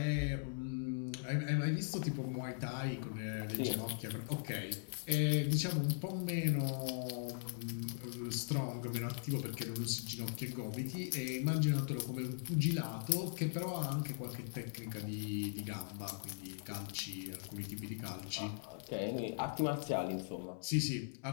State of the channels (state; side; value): silent; right; digital silence